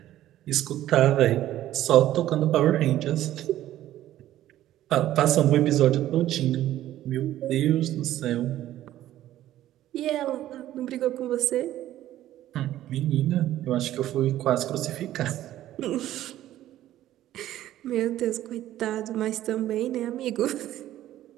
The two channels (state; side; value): quieter; left; 13.4 dB